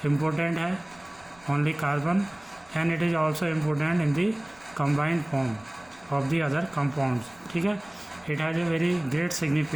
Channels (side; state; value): right; noise; rumble, 29 dB below the sound